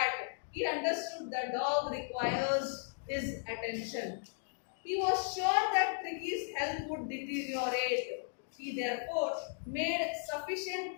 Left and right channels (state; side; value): silent; right; digital silence